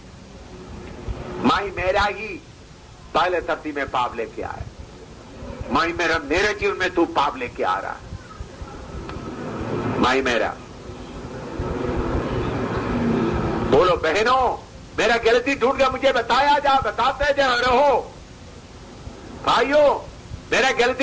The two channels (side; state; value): both; identical; correlation 1.00